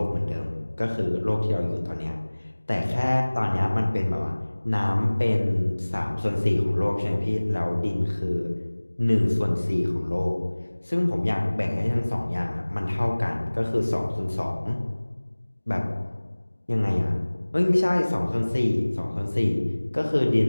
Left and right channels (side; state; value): both; inverted; correlation -1.00